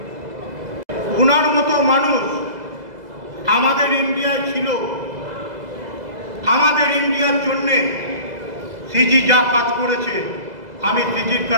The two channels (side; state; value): left; late; 2.0 ms